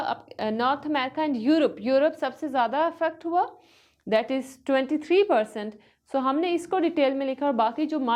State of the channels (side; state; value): both; identical; correlation 1.00